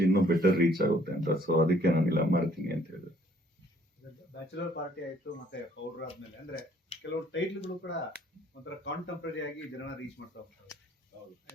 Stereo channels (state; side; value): normal; both; correlation 0.62